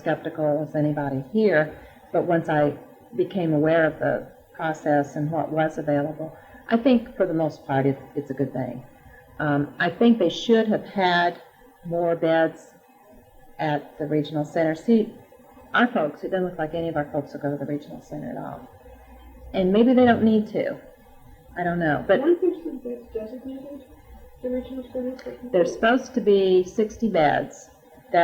as anybody here. But once I became aware of the process and what was available, I think for the most part it's a good thing. I think they should have had more beds at the regional center. See, our folks, it doesn't look like any of our folks will go to the regional center at all. And maybe they don't need to. I don't know. But One person that's designated the regional center for people? there's supposed to be 60 beds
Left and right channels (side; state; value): both; identical; correlation 1.00